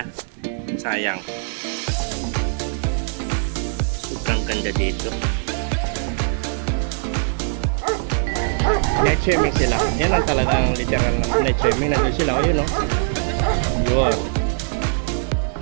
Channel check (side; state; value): left; silent; digital silence